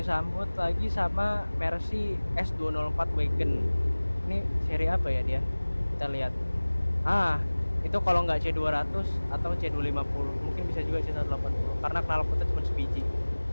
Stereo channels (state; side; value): inverted; both; correlation -1.00